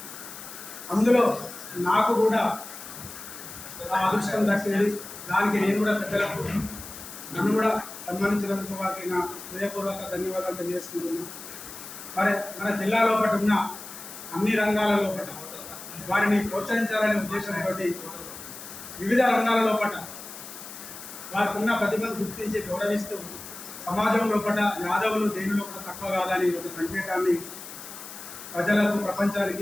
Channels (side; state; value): left; noise; hiss, 13 dB below the sound